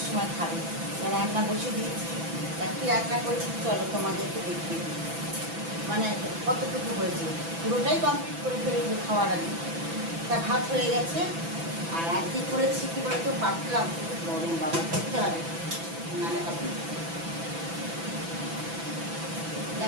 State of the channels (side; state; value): left; late; 6.0 ms